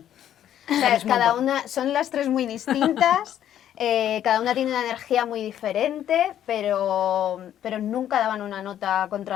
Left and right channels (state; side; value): quieter; right; 10.9 dB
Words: O sea, Sabes un cada montón. una, son las tres muy distintas, cada una tiene una energía muy diferente, pero nunca daban una nota